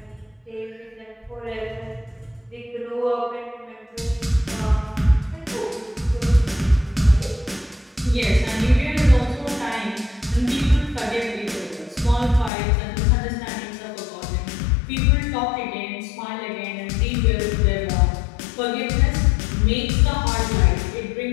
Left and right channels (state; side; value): drops out; right; at 12.5 s